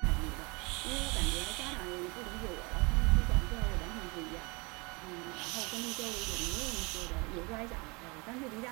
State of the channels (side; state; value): left; quieter; 28.0 dB